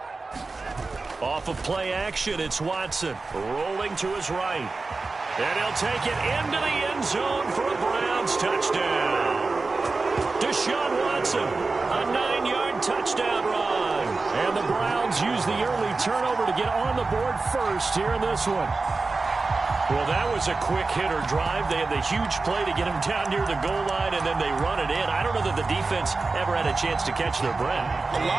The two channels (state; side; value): quieter; left; 3.8 dB